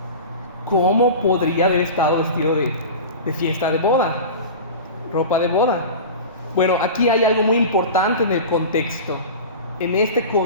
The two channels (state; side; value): inverted; both; correlation -0.31